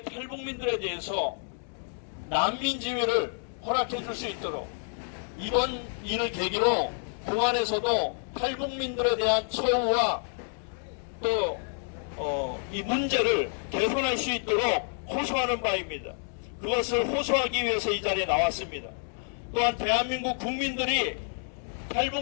탈북민들에 대해서 난민 지위를 허락해 줄 수 있도록, 이번 일을 계기로 공안에서도 탈북민들에 대한 처우와 또 이 문제를 개선할 수 있도록 호소하는 바입니다. 그것을 호소하기 위해서 이 자리에 나왔습니다. 또한 대한민국 국민들이,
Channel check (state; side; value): silent; right; 59 dB below the other